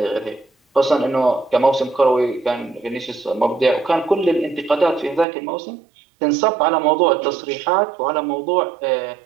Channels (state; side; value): drops out; left; at 5.2 s